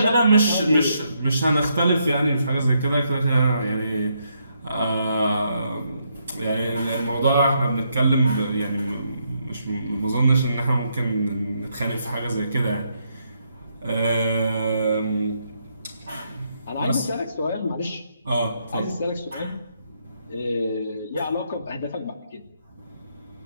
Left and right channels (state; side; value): inverted; both; correlation -0.77